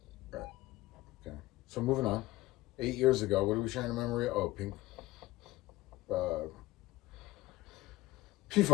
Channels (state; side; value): quieter; right; 18.1 dB